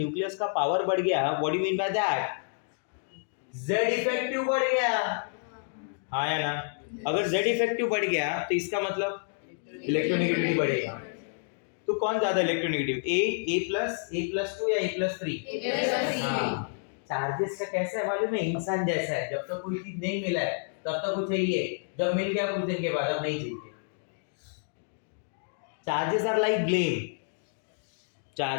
का पावर बढ़ गया, what do you mean by that? Z effective बढ़ गया, हाँ या ना? अगर Z इफेक्टिव बढ़ गया तो इसका मतलब इलेक्ट्रोनेगेटिविटी बढ़ेगा. तो कौन ज्यादा इलेक्ट्रोनेगेटिव, A+2 या A+3? हाँ. चार्जेस का कैसा है मालूम है? इंसान जैसा है, जब तक कोई चीज नहीं मिला है तब तक वो चाहिए, जब मिल गया कुछ दिन के बाद अब नहीं चाहिए. Charges are like blame.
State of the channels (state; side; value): silent; right; digital silence